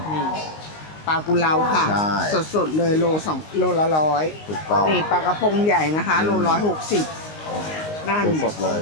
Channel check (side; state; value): right; late; 19 ms